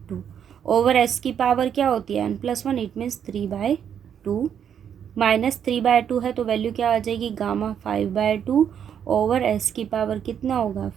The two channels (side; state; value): left; quieter; 8.5 dB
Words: over S की पावर क्या होती है n+1। इट मीन्स 3/2 माइनस 3/2 है तो वैल्यू क्या आ जाएगी गामा 5/2 ओवर एस की पावर कितना होगा